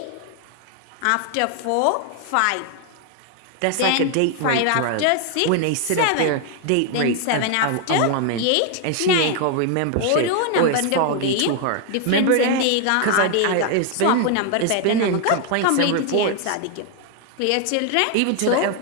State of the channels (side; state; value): both; different; correlation 0.00